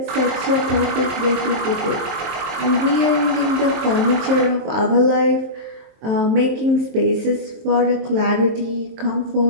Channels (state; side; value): late; left; 23 ms